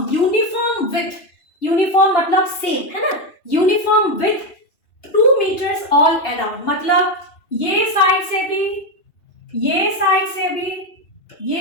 uniform width. Uniform मतलब सेम है ना, uniform width 2 metres all around. मतलब ये साइड से भी, ये साइड से भी,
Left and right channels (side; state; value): right; late; 2.9 ms